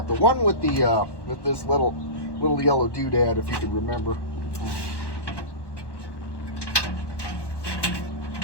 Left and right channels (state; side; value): late; right; 1.1 ms